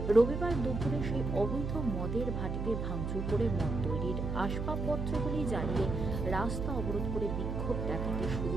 রবিবার দুপুরে সেই অবৈধ মদের ভাটিতে ভাঙচুর করে মদ তৈরির আসবাবপত্রগুলি জ্বালিয়ে রাস্তা অবরোধ করে বিক্ষোভ দেখাতে শুরু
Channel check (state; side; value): noise; right; hum, 3 dB below the sound